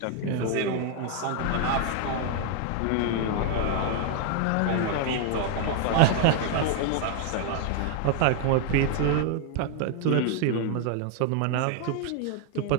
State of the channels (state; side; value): different; both; correlation 0.00